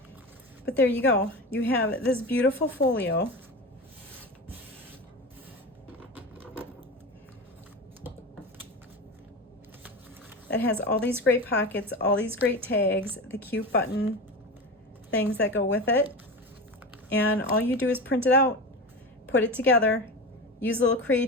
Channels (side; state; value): both; normal; correlation 0.25